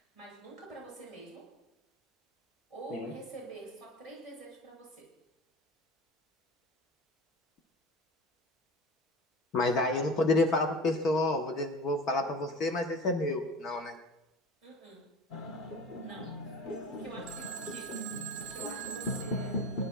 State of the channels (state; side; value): normal; both; correlation 0.35